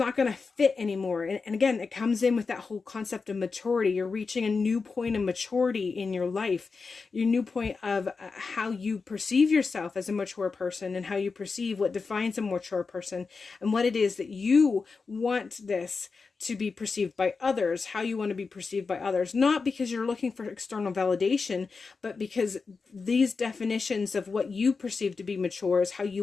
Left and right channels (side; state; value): right; quieter; 4.6 dB